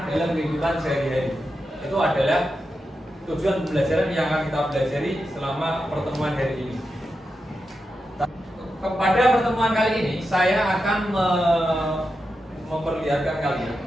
dalam kehidupan sehari-hari. Itu adalah tujuan pembelajaran yang akan kita pelajari selama pertemuan hari ini. Pada pertemuan kali ini, saya akan memperlihatkan kalian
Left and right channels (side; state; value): both; normal; correlation 0.88